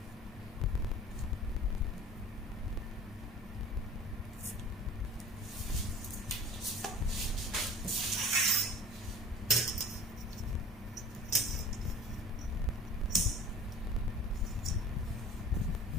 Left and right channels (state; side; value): normal; both; correlation 0.44